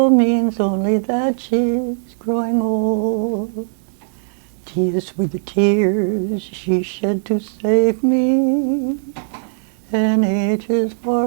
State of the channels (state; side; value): silent; left; digital silence